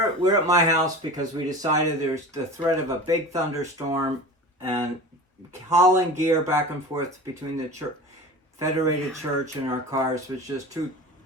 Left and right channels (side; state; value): both; normal; correlation 0.34